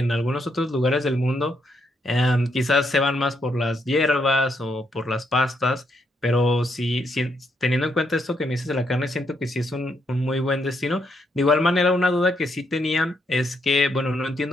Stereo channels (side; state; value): both; normal; correlation 0.77